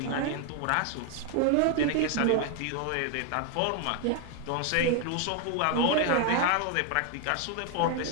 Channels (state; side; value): different; both; correlation 0.00